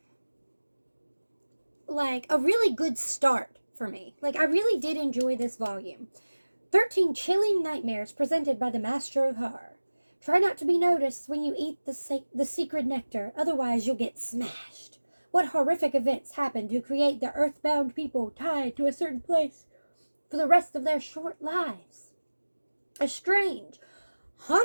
like a really good start for me. Like, I really did enjoy this volume. 13 chilling nightmares presented by the Master of Horror. Try not to be noticed when you eat the secret nectar, otherwise you'll get smashed. What horrific events happen to create the earthbound people tied to a certain place for the rest of their short lives? A strange,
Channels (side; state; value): both; inverted; correlation -1.00